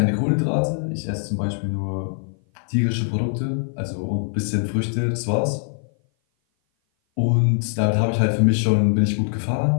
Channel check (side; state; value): right; silent; 57 dB below the other